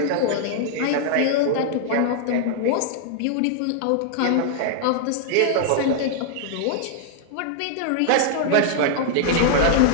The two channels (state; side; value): different; both; correlation -0.01